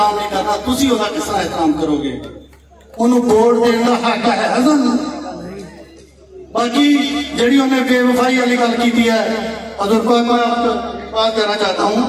नहीं करना, तुसीं ओहदा किस तरह एहतराम करोगे? उन्होंने वोट देने का हक है सानूं। बाकी जिहड़ी उन्हें बेवफाई वाली गल की है, हज़ूर पाक मैं आपको बात कहना चाहता हूँ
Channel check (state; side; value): identical; both; correlation 1.00